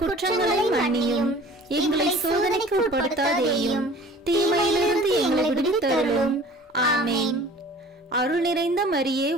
குற்றங்களை மன்னியும். எங்களை சோதனைக்கு உட்படுத்தாதேயும், தீமையிலிருந்து எங்களை விடுவித்தருளும். ஆமேன். அருள் நிறைந்த மரியே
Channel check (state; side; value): normal; both; correlation 0.46